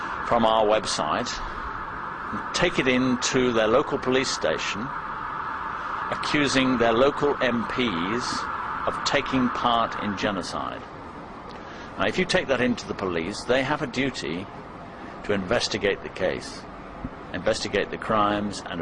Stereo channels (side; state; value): both; identical; correlation 1.00